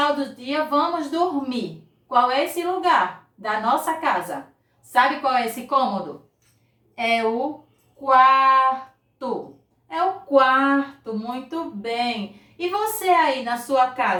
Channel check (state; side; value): identical; both; correlation 1.00